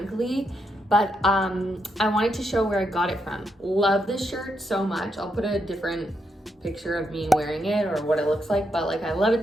but I wanted to show where I got it from. Love this shirt so much. I'll put a different picture of me wearing it or what it looks like, but like I love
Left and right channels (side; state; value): both; normal; correlation 0.81